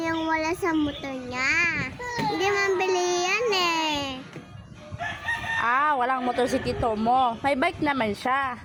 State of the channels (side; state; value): both; identical; correlation 1.00